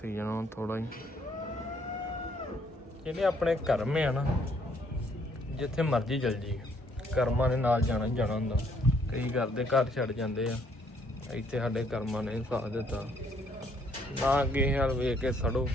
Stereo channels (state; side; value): normal; both; correlation 0.67